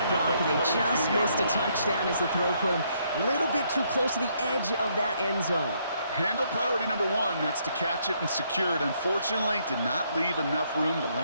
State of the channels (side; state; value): both; inverted; correlation -0.71